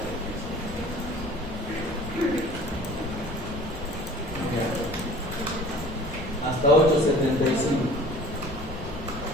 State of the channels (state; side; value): normal; both; correlation 0.46